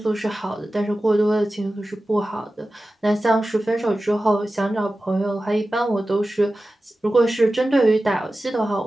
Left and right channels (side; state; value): both; normal; correlation 0.95